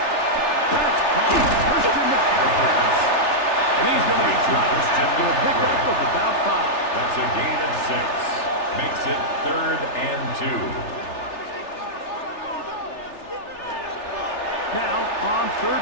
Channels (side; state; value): right; late; 3.4 ms